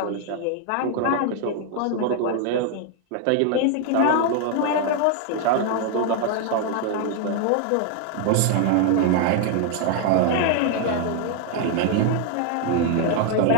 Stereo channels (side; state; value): both; different; correlation 0.00